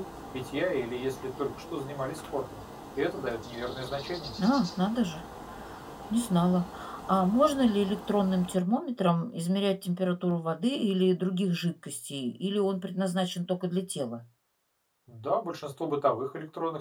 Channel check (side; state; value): both; identical; correlation 1.00